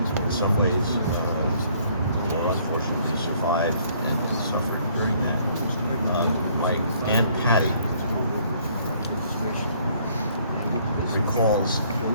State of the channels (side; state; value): both; inverted; correlation -0.62